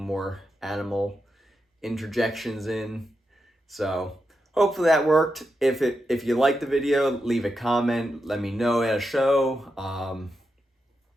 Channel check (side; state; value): both; normal; correlation 0.86